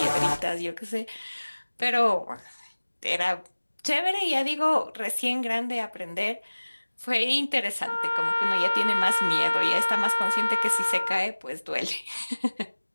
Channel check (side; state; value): both; inverted; correlation -1.00